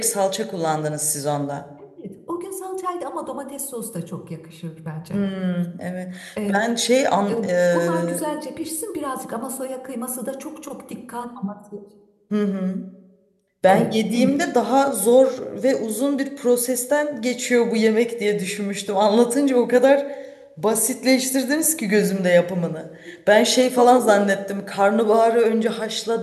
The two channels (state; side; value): identical; both; correlation 1.00